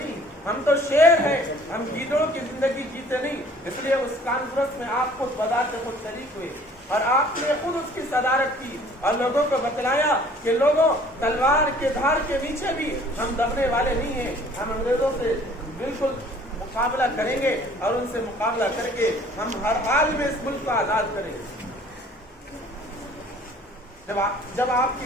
ہم تو شیر ہیں، ہم گیدڑوں کی زندگی جیتے نہیں۔ اس لیے اس کانفرنس میں آپ خود بذات خود شریک ہوئے اور آپ نے خود اس کی صدارت کی اور لوگوں کو بتلایا کہ لوگوں تلوار کے دھار کے نیچے بھی ہم ڈرنے والے نہیں ہیں، ہم انگریزوں سے بالکل مقابلہ کریں گے اور ان سے مقابلہ کر کے ہم ہر حال میں اس ملک کو آزاد کریں گے۔ جب آپ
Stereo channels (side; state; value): both; normal; correlation 0.53